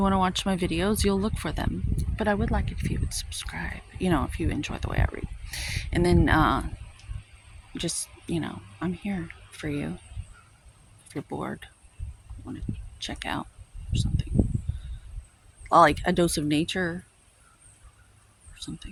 to watch my videos, you'll look for them. But I would like it if you would subscribe, if you enjoy the way I read. And then just, I'm here for you. If you're bored, want to check out or something. Like a dose of nature or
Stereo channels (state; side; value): identical; both; correlation 1.00